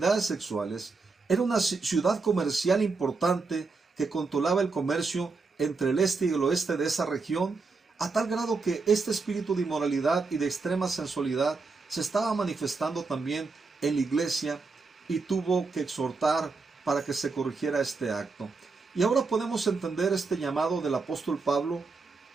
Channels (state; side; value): quieter; left; 4.2 dB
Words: sexuales. Era una ciudad comercial importante que controlaba el comercio entre el este y el oeste de esa región, a tal grado que este espíritu de inmoralidad y de extrema sensualidad se estaba manifestando también en la iglesia, y tuvo que exhortar para que se corrigiera este acto. Y ahora podemos entender este llamado del apóstol Pablo